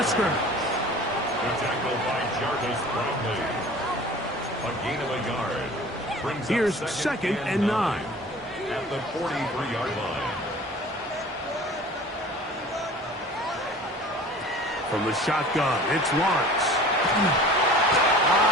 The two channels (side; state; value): both; normal; correlation 0.43